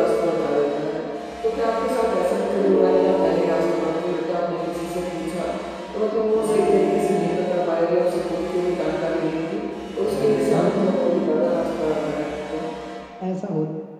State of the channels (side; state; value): both; identical; correlation 1.00